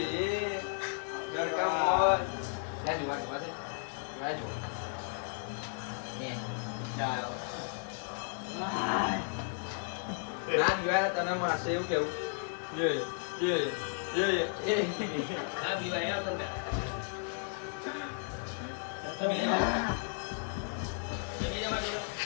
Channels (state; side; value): silent; right; 55 dB below the other